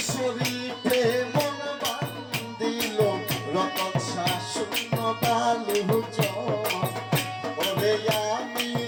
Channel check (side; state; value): both; identical; correlation 1.00